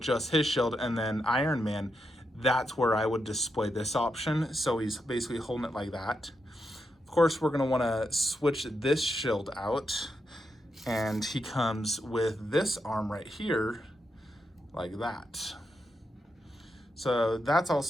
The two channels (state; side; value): normal; both; correlation 0.84